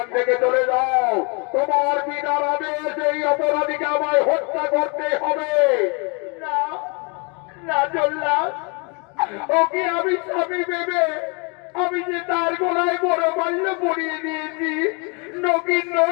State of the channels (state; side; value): quieter; right; 33.1 dB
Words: থেকে চলে যাও, তোমার বিনার আদেশ এই অপরাধীকে আমায় হত্যা করতে হবে। না জল্লাদ, ওকে আমি স্বামী ভেবে আমি যে তার গলায় বড় মাল্য পরিয়ে দিয়েছি,